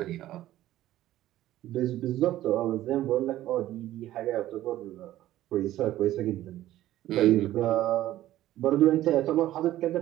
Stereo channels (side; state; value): left; quieter; 14.2 dB